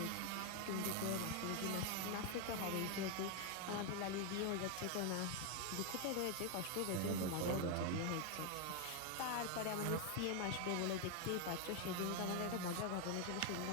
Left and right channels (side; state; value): both; different; correlation 0.01